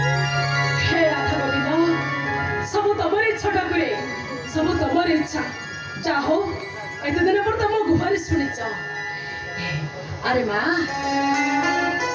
হে রাধা গোবিন্দ সব তোমার ইচ্ছা ঠাকুরে সব তোমার ইচ্ছা। চাহো এতদিন পর তো মো গুহারি শুনিছ। আরে মা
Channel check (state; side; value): identical; both; correlation 1.00